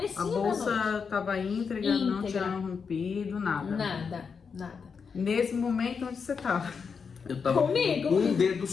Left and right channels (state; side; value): quieter; right; 5.8 dB